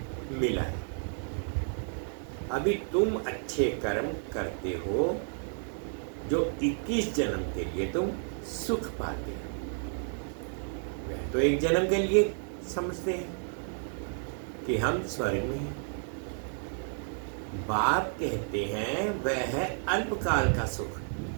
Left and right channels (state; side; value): silent; left; 57 dB below the other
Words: मिला है। अभी तुम अच्छे कर्म करते हो जो 21 जन्म के लिए तुम सुख पाते हो। वह तो एक जन्म के लिए समझते हैं कि हम स्वर्ग में हैं। बाप कहते हैं वह है अल्पकाल का सुख,